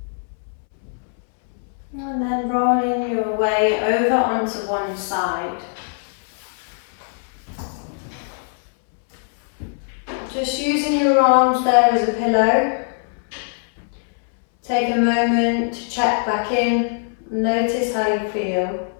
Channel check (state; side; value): silent; right; 64 dB below the other